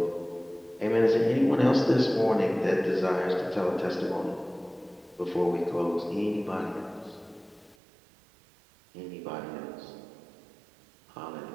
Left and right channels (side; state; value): left; drops out; at 7.8 s